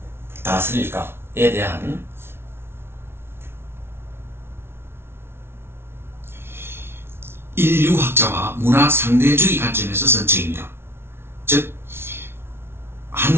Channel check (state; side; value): late; left; 0.12 ms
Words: 다스릴까에 대한 인류학자와 문화 상대주의 관점에서 쓴 책입니다. 즉,